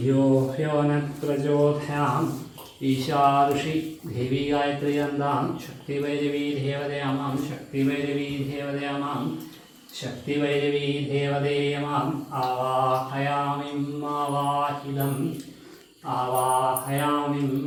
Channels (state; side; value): identical; both; correlation 1.00